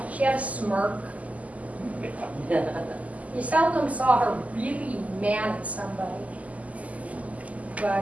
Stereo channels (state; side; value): late; left; 0.072 ms